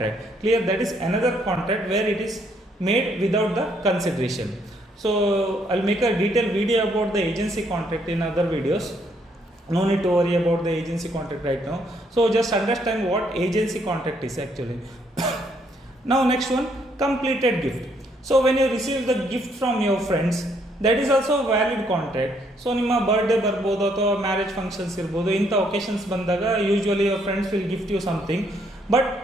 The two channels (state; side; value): normal; both; correlation 0.70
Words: Clear? That is another contract where it is made without the consideration. So I'll make a detailed video about the agency contract in other videos. No need to worry about the agency contract right now. So just understand what agency contract is actually. Now next one, completed gift. So when you receive the gift from your friends, that is also a valid contract. So ನಿಮ್ಮ birthday ಬರ್ಬೋದು ಅಥವಾ marriage functions ಇರ್ಬೋದು, ಇಂಥ occasions ಬಂದಾಗ usually your friends will gift you something, but